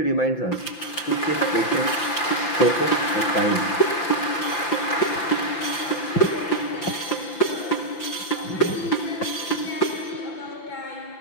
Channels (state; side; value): late; right; 5.8 ms